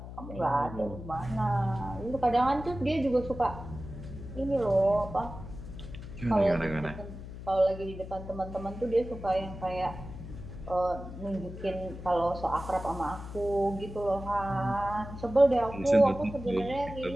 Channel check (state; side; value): noise; left; hum, 11 dB below the sound